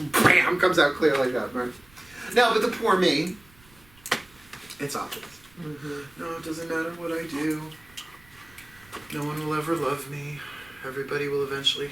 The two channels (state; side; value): noise; right; rumble, 28 dB below the sound